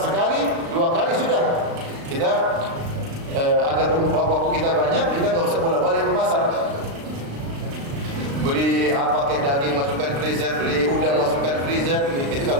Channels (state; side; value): late; left; 36 ms